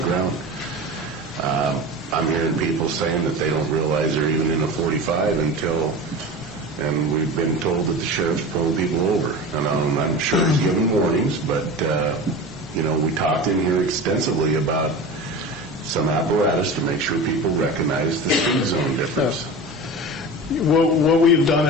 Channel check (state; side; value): normal; both; correlation 0.31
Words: I'm hearing people saying that they don't realize they're even in a 45 and we've been told that the sheriff's pulling people over. And I'm sure he's giving warnings, but we talked in here extensively about some apparatus to make sure people recognize the speed zone difference. What we've done